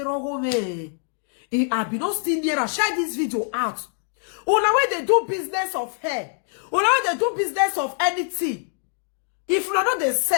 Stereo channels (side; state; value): right; silent; digital silence